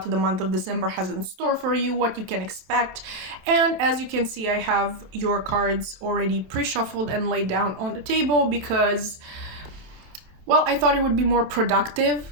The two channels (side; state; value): left; late; 27 ms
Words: the month of December has in store for you, what you can expect. And as you can see, I have your cards already pre-shuffled and laid down on the table because, well, I thought it would be more productive